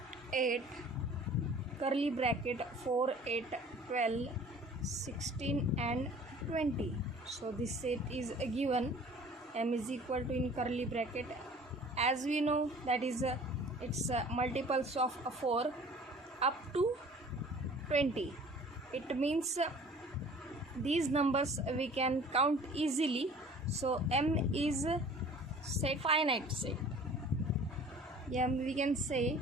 8, curly bracket 4, 8, 12, 16 and 20. So this set is given, m is equal to, in curly bracket, as we know that is it's multiples of 4 up to 20. It means these numbers we can count easily. So m is set, finite set. We can say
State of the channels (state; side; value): normal; both; correlation 0.48